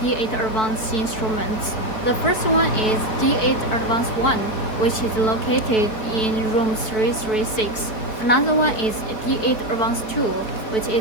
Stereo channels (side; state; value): right; late; 4.4 ms